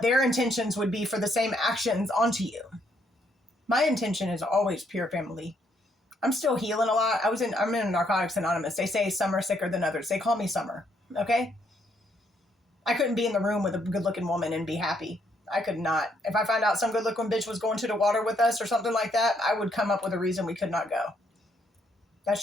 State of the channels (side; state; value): both; normal; correlation 0.72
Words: their intentions would be for the same actions onto you. My intention is always pure, family. I'm still healing a lot. I'm in Narcotics Anonymous. They say some are sicker than others. They call me Summer. Okay? I couldn't be in the room with a good-looking woman and be happy. I could not. If I found out some good-looking bitch was going to the water with us or something like that, I would come up with a reason we could not go. That's